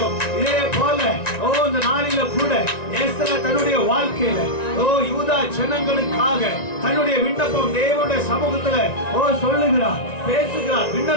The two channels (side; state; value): right; late; 1.9 ms